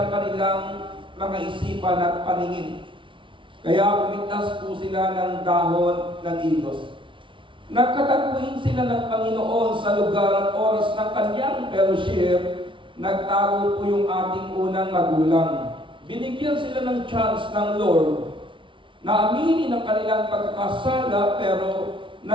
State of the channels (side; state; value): left; late; 0.25 ms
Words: kanilang mga isipan at paningin. Kaya pumitas po sila ng dahon ng igos. Nagkatagpuin sila ng Panginoon sa lugar at oras ng kanyang fellowship. Nagtago po yung ating unang magulang. Binigyan sila ng chance ng Lord na aminin ang kanilang pagkakasala, pero